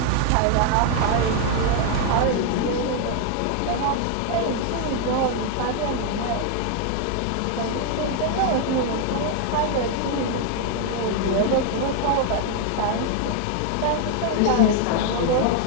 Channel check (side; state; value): both; different; correlation 0.00